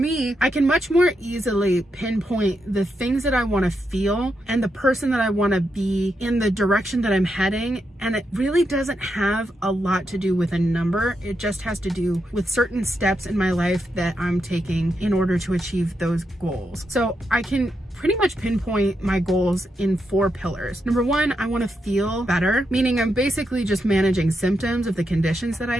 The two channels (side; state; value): both; normal; correlation 0.83